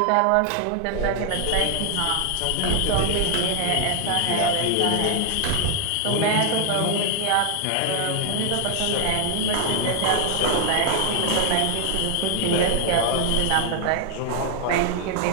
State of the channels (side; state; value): both; different; correlation 0.00